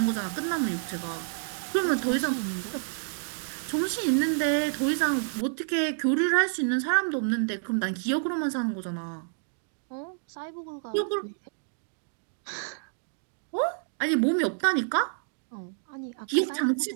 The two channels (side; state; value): left; silent; digital silence